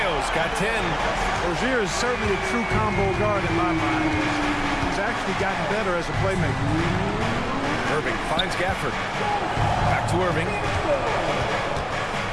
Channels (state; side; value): identical; both; correlation 1.00